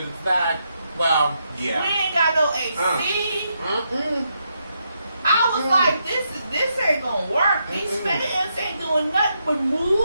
in fact, well, yeah. We ain't got no AC. Mm-mm. I was like, this ain't gonna work. These fans ain't doing nothing but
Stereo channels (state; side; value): inverted; both; correlation -0.80